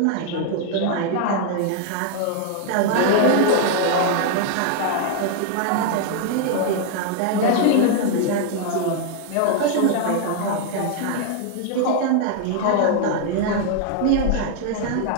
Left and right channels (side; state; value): both; different; correlation 0.00